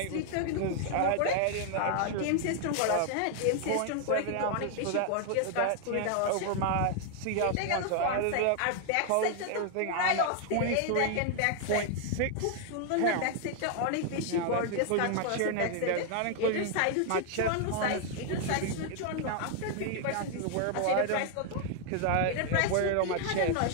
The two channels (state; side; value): different; both; correlation 0.00